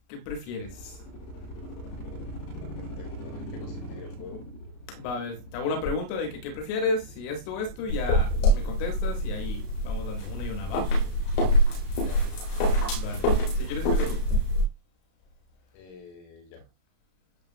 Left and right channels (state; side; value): late; right; 32 ms